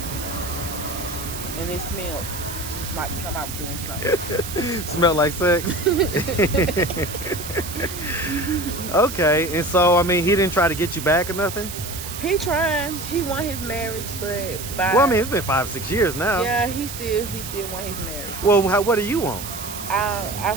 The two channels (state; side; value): noise; right; hiss, 9 dB below the sound